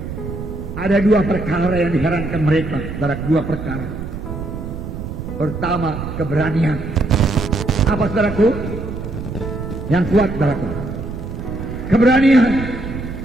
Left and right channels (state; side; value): noise; right; rumble, 7 dB below the sound